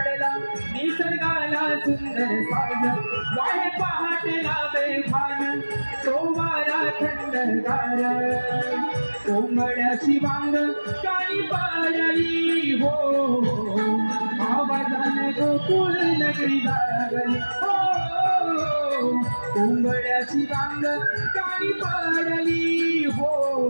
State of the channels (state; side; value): inverted; both; correlation -1.00